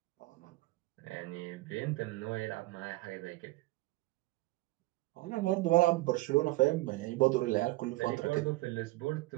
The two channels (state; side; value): quieter; left; 20.2 dB